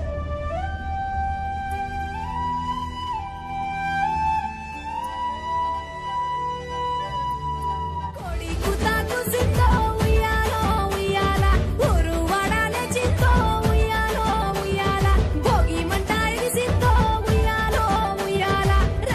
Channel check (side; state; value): both; identical; correlation 1.00